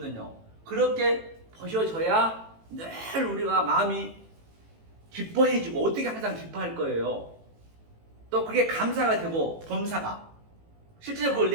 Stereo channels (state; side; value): late; left; 18 ms